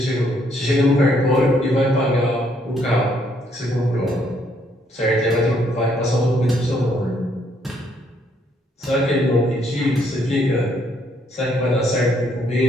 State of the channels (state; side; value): normal; both; correlation 0.70